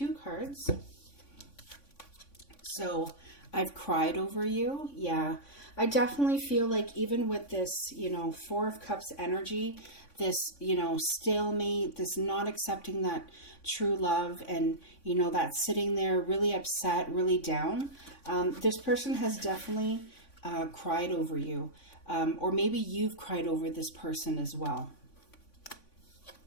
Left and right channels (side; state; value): right; late; 3.5 ms